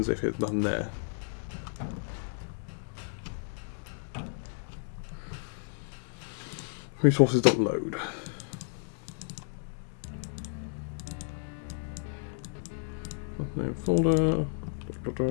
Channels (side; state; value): right; silent; digital silence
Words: if it's none there. Resources.load. Name folder.